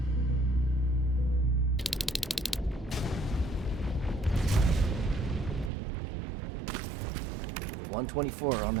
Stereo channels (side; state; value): left; drops out; at 5.7 s